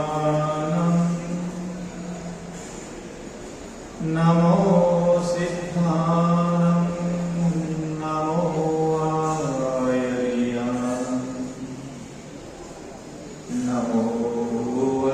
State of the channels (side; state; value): both; identical; correlation 1.00